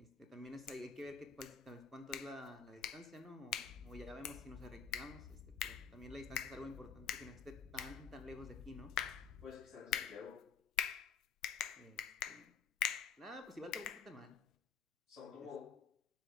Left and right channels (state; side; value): quieter; right; 7.2 dB